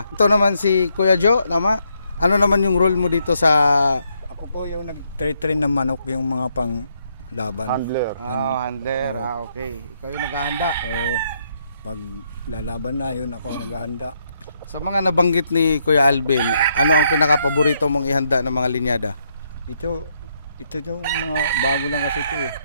Ito naman si Kuya Joe, tama? Ano naman yung role mo dito sa... Ako po yung nag-train ng manok, yung mga pang laban. Handler. Handler. Okay. Ikaw yung naghahanda. Oo. Pag lalaban na, yun ako naghahanda. Sa mga nabanggit ni Kuya Alvin, ano ang pinaka-paborito mong ihanda ng mga linyada? Ito yung mga bago lang kasi ito eh.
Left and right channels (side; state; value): both; inverted; correlation -0.75